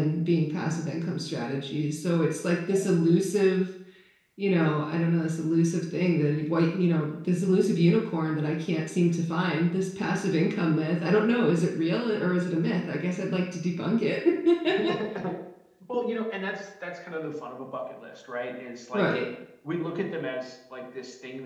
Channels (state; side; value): identical; both; correlation 1.00